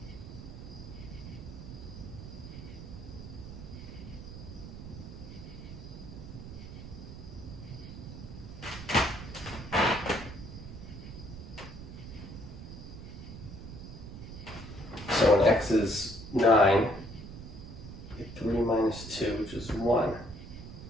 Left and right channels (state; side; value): noise; right; rumble, 11 dB below the sound